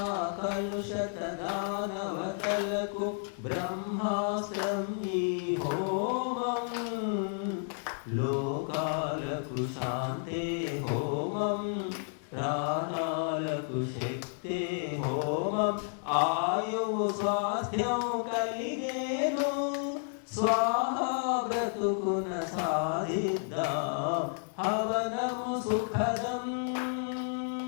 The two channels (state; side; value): silent; right; 57 dB below the other